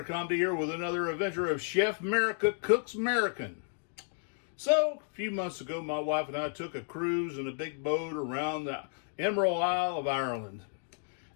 Comedy here with another adventure of Chef Merica Cooks American. So, a few months ago, my wife and I took a cruise in a big boat around the Emerald Isle of Ireland.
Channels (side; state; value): right; silent; 56 dB below the other